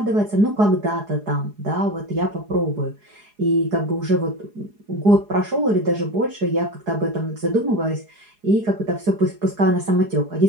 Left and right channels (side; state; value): left; late; 4.8 ms